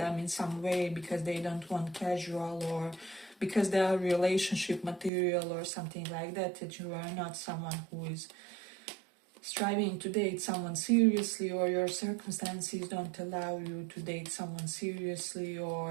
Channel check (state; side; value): drops out; left; at 5.1 s